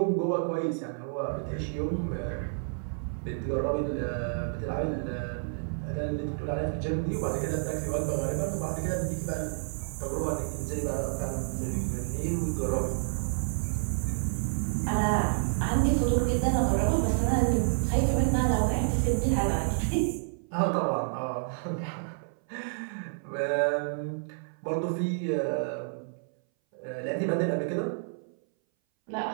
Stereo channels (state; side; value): silent; left; 58 dB below the other